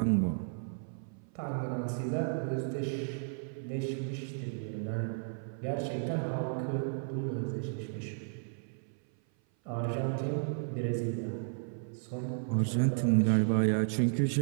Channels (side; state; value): left; silent; 55 dB below the other